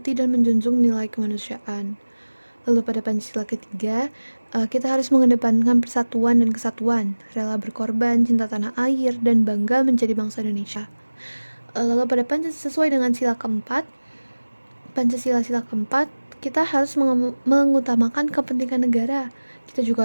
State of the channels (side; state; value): both; inverted; correlation -1.00